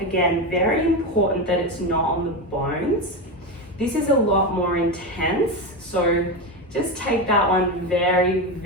very important that it's not on the bones. This is a lot more intense, so just take that one very,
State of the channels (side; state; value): both; normal; correlation 0.16